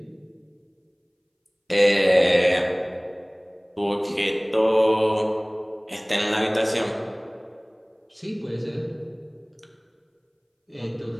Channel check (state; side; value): identical; both; correlation 1.00